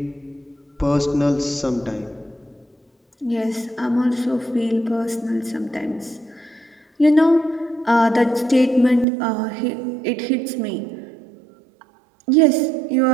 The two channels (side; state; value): left; drops out; at 9.1 s